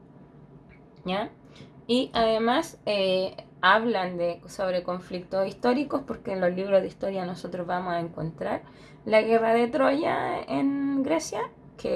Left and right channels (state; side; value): identical; both; correlation 1.00